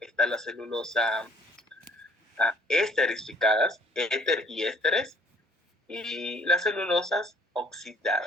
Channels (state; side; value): normal; both; correlation 0.59